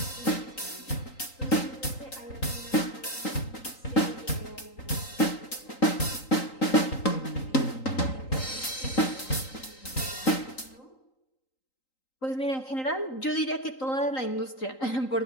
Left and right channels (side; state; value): right; late; 3.9 ms